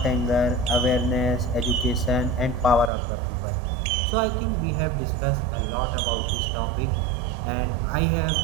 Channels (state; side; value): drops out; left; at 2.9 s